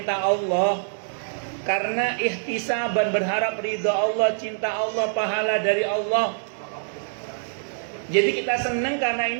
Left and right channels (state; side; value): silent; left; digital silence